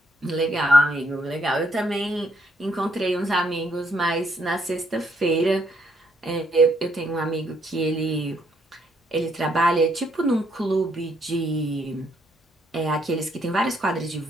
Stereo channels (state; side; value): normal; both; correlation 0.72